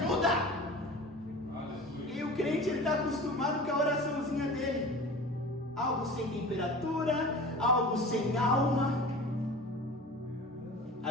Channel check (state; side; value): normal; both; correlation 0.37